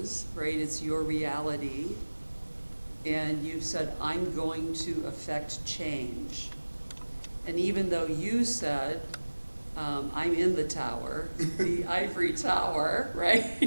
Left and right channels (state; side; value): inverted; both; correlation -1.00